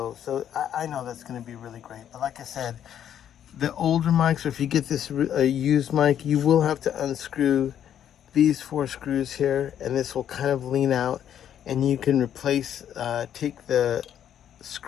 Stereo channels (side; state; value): right; quieter; 9.9 dB